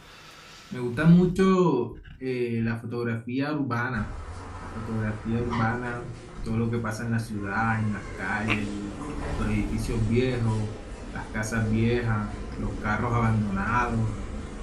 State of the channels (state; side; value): identical; both; correlation 1.00